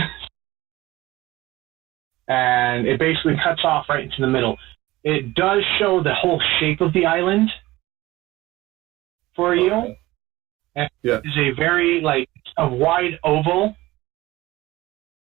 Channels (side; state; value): left; quieter; 18.5 dB